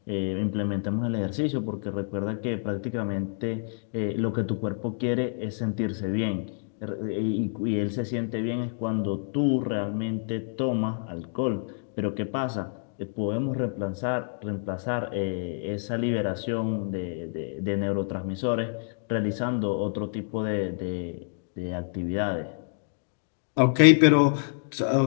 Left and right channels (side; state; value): right; silent; digital silence